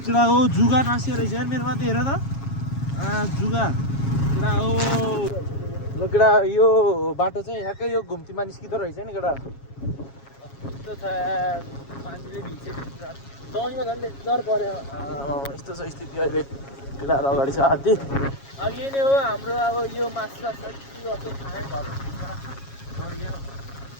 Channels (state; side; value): late; right; 7.3 ms